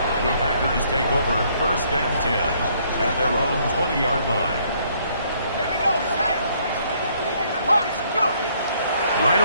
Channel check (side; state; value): both; inverted; correlation -0.66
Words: The Packers take over first and 10 at their own 20-yard line. Here we go, set. March, go. Right